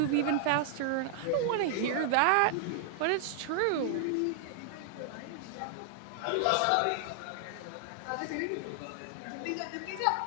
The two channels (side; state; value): both; different; correlation -0.01